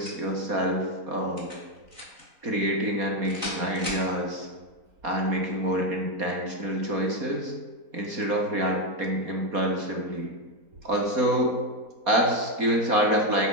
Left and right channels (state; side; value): late; left; 4.2 ms